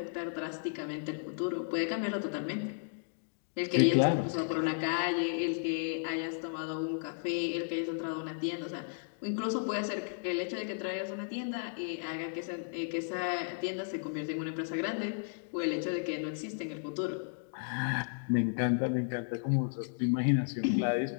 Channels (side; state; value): right; silent; digital silence